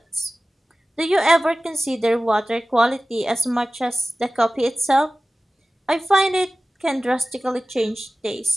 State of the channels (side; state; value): both; normal; correlation 0.97